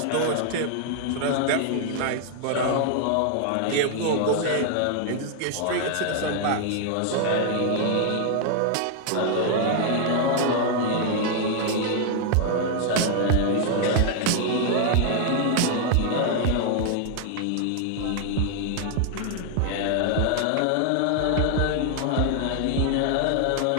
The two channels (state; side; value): different; both; correlation 0.00